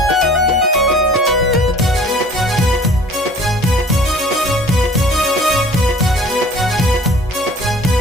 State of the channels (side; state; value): both; normal; correlation 0.48